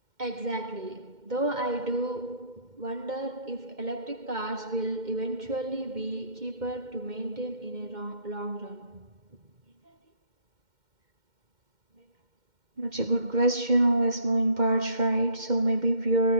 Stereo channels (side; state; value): left; late; 2.1 ms